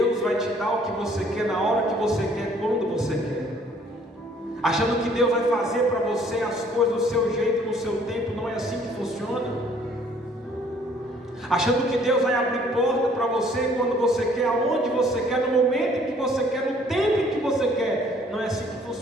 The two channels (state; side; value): normal; both; correlation 0.59